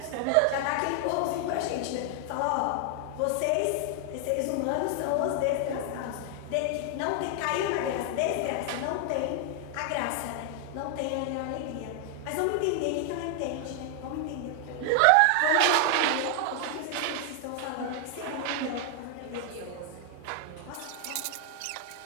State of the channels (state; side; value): different; both; correlation 0.00